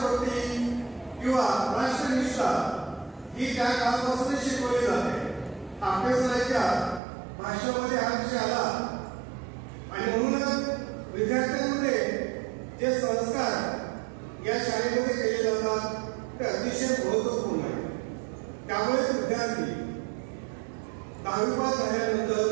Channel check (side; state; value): left; drops out; at 7.0 s